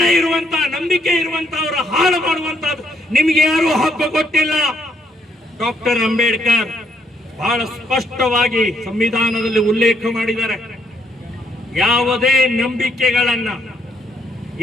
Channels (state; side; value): normal; both; correlation 0.73